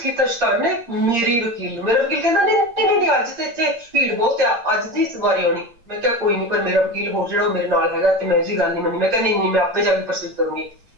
ਕੀਤਾ ਸ਼ੈਤਾਨ ਨੇ ਮੇਰਾ ਵਕੀਲ ਕਹਿੰਦਾ ਨਹੀਂ ਅੱਜ ਤੇ ਇੱਥੇ ਭੀੜ ਬਹੁਤ ਆ ਅੱਜ ਦੀ ਵਾਰੀ ਆਉਣੀ ਮੈਂ ਕਿਹਾ ਕੋਈ ਨਹੀਂ ਪਰ ਮੇਰਾ ਵਕੀਲ ਹੋਰ ਜਿਹੜਾ ਉਹ ਮੇਰੇ ਨਾਲ ਹੈਗਾ ਤੇ ਮੈਂ ਇਹਦੀ ਗੱਲ ਨਹੀਂ ਮੰਨੀ ਮੈਂ ਕਿਹਾ ਨਹੀਂ ਮੈਂ ਆਪੇ ਜਾ ਕੇ ਪ੍ਰੋਸੀਡ ਕਰੂੰਗੀ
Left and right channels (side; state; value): left; late; 8.7 ms